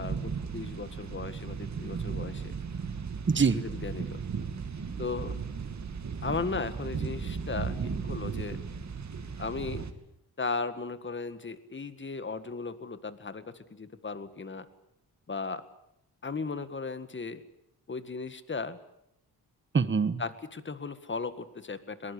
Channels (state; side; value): normal; both; correlation 0.37